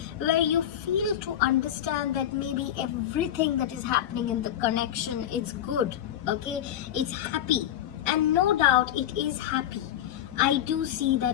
where you feel to understand that maybe everything that is happening in the connection is good. Okay, it's happy, and no doubt it is happy. I do see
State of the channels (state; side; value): quieter; right; 11.2 dB